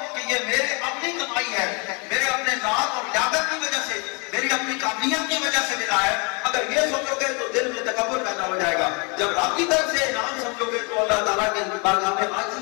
کہ یہ میرے اپنی کمائی ہے، میرے اپنے ذات اور لیاقت کی وجہ سے، میری اپنی قابلیت کی وجہ سے ملا ہے. اگر یہ سوچو گے تو دل میں تکبر پیدا ہو جائے گا. جب رب کی طرف سے انعام سمجھو گے تو اللہ تعالیٰ کے بارگاہ میں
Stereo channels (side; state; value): right; quieter; 32.6 dB